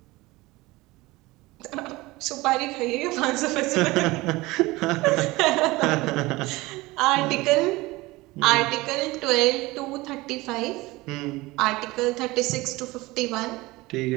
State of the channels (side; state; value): left; quieter; 20.9 dB